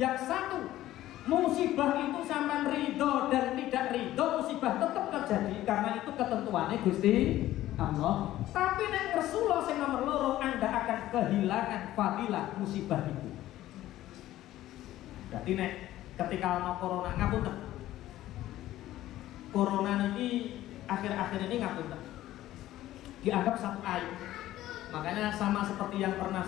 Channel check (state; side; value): quieter; right; 14.5 dB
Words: Yang 1, musibah itu sampean ridho dan tidak ridho, musibah tetap terjadi karena itu ketentuannya Gusti Allah. Tapi nek ngersulo sing nomor 2, Anda akan kehilangan fadilah musibah itu. Berarti nek ketika ana corona ngapunten. Corona ini akhir-akhir ini ngapunten dianggap 1 aib. Makanya sama seperti yang pernah